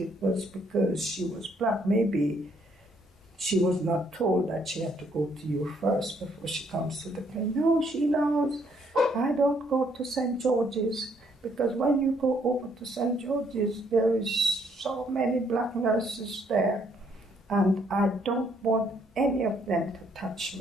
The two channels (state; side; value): normal; both; correlation 0.68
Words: was because she was black? Maybe she was not told that she had to go to you first before she comes to the clinic. No, she knows. I don't go to St. George's, because when you go over to St. George's, there is so many black nurses there, and I don't want any of them to touch